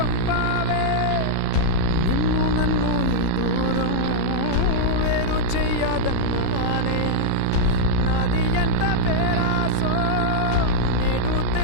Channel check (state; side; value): different; both; correlation -0.01